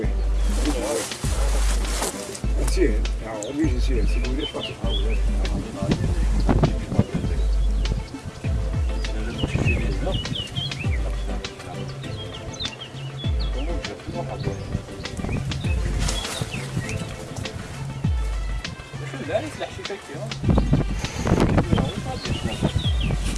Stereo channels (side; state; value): both; identical; correlation 1.00